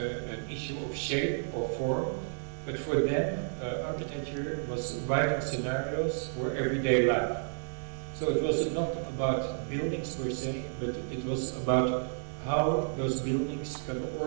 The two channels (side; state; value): left; silent; digital silence